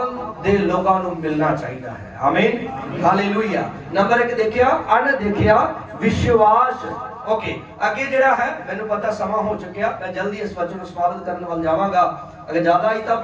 ਦੇ ਲੋਕਾਂ ਨੂੰ ਮਿਲਣਾ ਚਾਹੀਦਾ ਹੈ। ਆਮੀਨ, ਹਾਲੇਲੂਇਆ। ਨੰਬਰ 1 ਦੇਖਿਆ ਅਣਦੇਖਿਆ ਵਿਸ਼ਵਾਸ। ਓਕੇ, ਅੱਗੇ ਜਿਹੜਾ ਹੈ ਮੈਨੂੰ ਪਤਾ ਸਮਾਂ ਹੋ ਚੁੱਕਿਆ, ਮੈਂ ਜਲਦੀ ਇਸ ਵਚਨ ਨੂੰ ਸਮਾਪਤ ਕਰਨ ਵੱਲ ਜਾਵਾਂਗਾ। ਅਗਰ ਜ਼ਿਆਦਾ ਹੀ ਤਾਂ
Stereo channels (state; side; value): identical; both; correlation 1.00